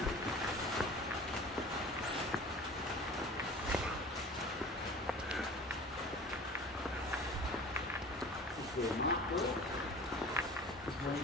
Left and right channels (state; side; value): normal; both; correlation 0.41